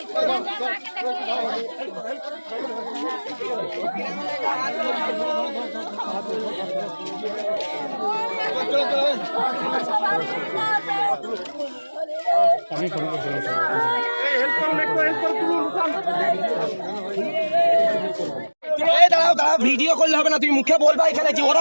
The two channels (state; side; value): inverted; both; correlation -1.00